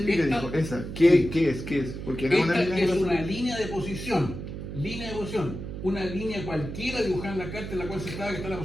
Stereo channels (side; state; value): right; noise; hum, 8 dB below the sound